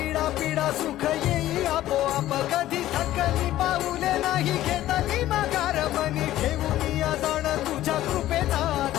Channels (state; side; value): quieter; right; 14.2 dB